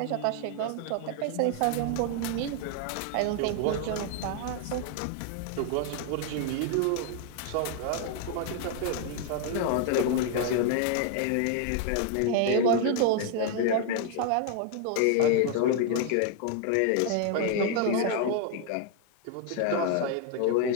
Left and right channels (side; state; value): both; different; correlation 0.00